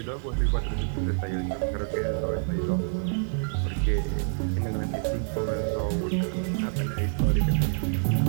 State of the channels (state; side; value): silent; left; 60 dB below the other